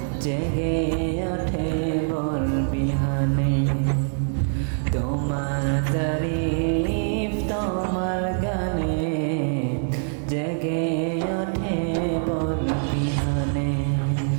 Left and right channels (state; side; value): silent; left; digital silence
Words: জেগে ওঠে ভোর বিহানে। তোমার তারিফ তোমার গানে জেগে ওঠে ভোর বিহানে।